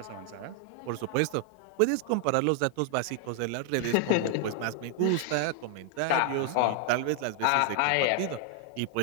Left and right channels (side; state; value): both; different; correlation 0.00